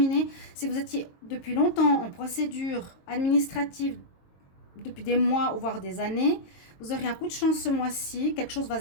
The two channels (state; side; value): late; right; 22 ms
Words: Si vous étiez depuis longtemps en procédure administrative, depuis des mois ou voire des années, vous aurez un coup de chance ce mois-ci. Quelque chose va